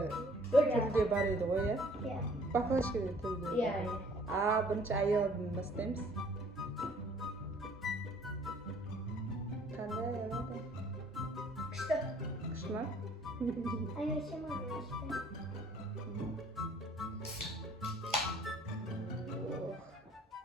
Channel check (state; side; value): normal; both; correlation 0.57